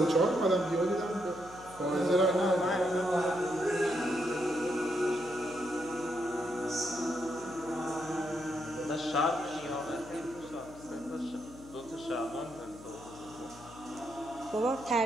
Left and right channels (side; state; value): left; noise; hum, 18 dB below the sound